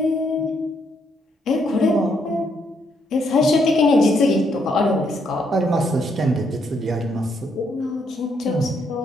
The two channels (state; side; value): normal; both; correlation 0.74